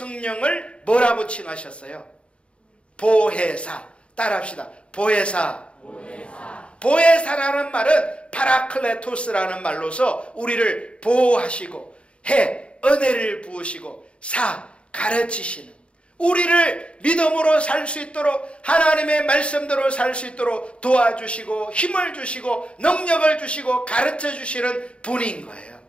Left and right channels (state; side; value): late; right; 0.059 ms